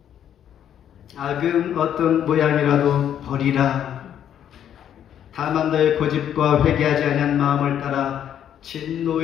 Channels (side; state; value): right; quieter; 9.8 dB